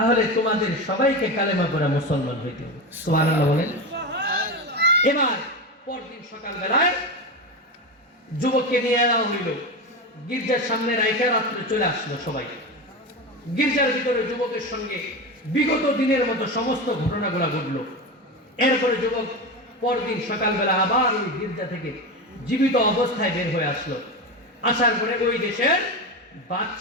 তোমাদের সবাইকে কালেমা পড়া মুসলমান হইতে হবে। সুবহানাল্লাহ বলেন। এবার পরদিন সকালবেলায় যুবককে নিয়ে যাওয়া হইল, গির্জার সামনে রাইখা রাত্রে চলে আসলো সবাই। গির্জার ভিতরে যুবকের সঙ্গে বিগত দিনের মতো সমস্ত ঘটনাগুলো ঘটলো। এরপরে যুবক পরদিন সকালবেলা আবার ওই গির্জা থেকে জীবিত অবস্থায় বের হয়ে আসলো। আসার পরে ওই দেশের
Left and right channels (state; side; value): normal; both; correlation 0.20